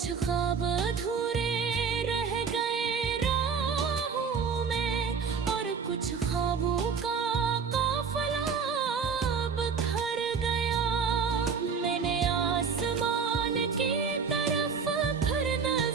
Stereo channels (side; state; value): left; quieter; 5.9 dB